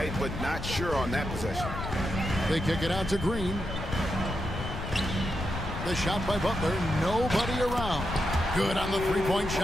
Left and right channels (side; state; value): left; noise; rumble, 7 dB below the sound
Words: but not sure on that possession. They kick it out to Green. The shot by Butler. Nobody around. Good on the three-point